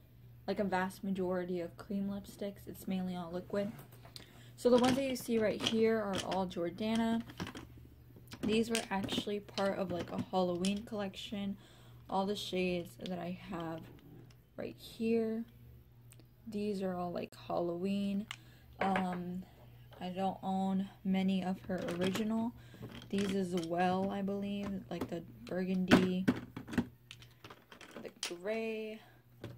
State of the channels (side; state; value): both; identical; correlation 1.00